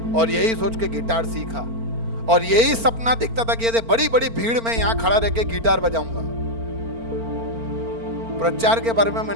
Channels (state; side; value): late; left; 4.4 ms